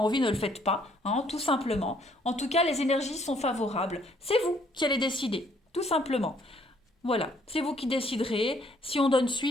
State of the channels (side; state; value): both; normal; correlation 0.65